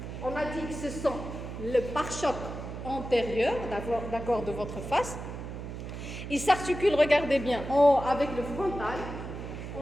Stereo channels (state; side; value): noise; right; hum, 8 dB below the sound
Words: on a dit que ce sont le pare-choc antérieur, d'accord, de votre face. Il s'articule, regardez bien, avec le frontal,